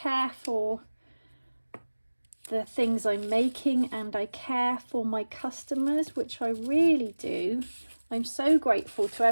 for the things I'm making, and I care for my customers, which I really do. I'm so grateful to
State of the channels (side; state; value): both; inverted; correlation -1.00